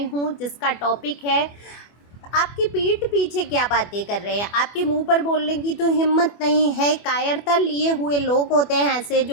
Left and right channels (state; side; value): late; right; 24 ms